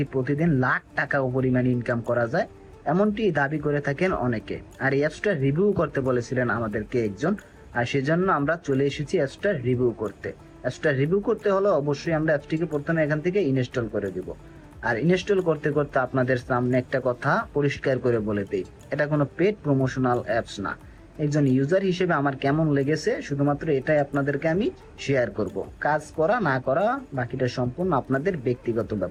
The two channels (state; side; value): identical; both; correlation 1.00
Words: প্রতিদিন লাখ টাকা পরিমাণ ইনকাম করা যায়, এমনটি দাবি করে থাকেন অনেকে। আর এই অ্যাপসটা রিভিউ করতে বলেছিলেন আমাদেরকে একজন, আর সেজন্য আমরা চলে এসেছি অ্যাপসটা রিভিউ করতে। অ্যাপসটা রিভিউ করতে হলে অবশ্যই আমরা অ্যাপসটিকে প্রথমে এখান থেকে ইনস্টল করে দিব। আর ইনস্টল করতে করতে আপনাদের সামনে একটা কথা পরিষ্কার করে বলে দেই, এটা কোনো পেড প্রমোশনাল অ্যাপস না। একজন ইউজার হিসেবে আমার কেমন লেগেছে শুধুমাত্র এটাই আপনাদেরকে আমি শেয়ার করব। কাজ করা না করা বাকিটা সম্পূর্ণ আপনাদের ব্যক্তিগত